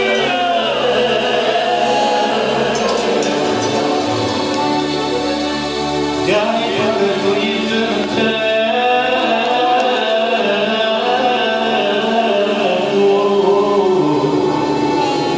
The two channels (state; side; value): identical; both; correlation 1.00